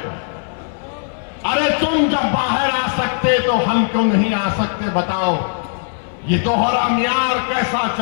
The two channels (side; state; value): right; silent; 62 dB below the other